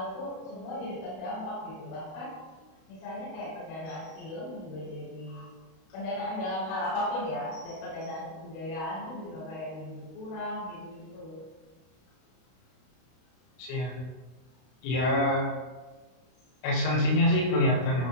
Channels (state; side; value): late; right; 32 ms